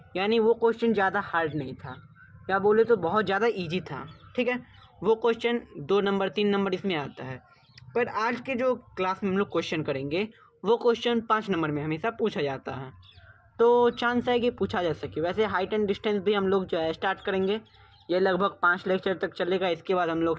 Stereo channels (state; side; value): identical; both; correlation 1.00